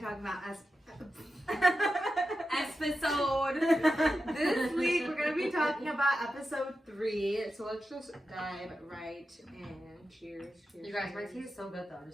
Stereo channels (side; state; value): both; normal; correlation 0.90